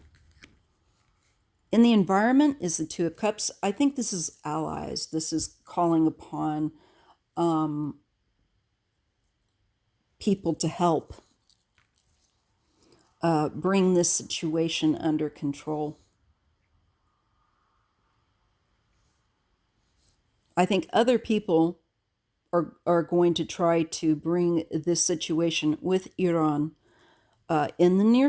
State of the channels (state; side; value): identical; both; correlation 1.00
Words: In the environment is the Two of Cups. I think this is allies. This is calling upon people to help bring this situation under control. I think other people are going to try to bring this situation with Iran in the near